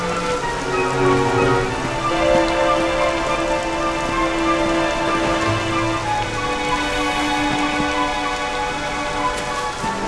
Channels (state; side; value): identical; both; correlation 1.00